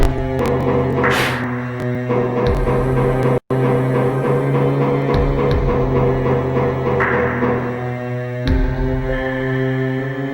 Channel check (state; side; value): identical; both; correlation 1.00